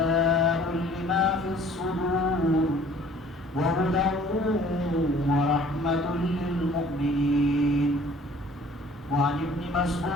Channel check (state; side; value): normal; both; correlation 0.53